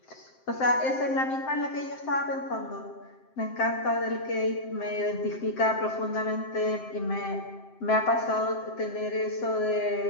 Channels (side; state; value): right; late; 7.7 ms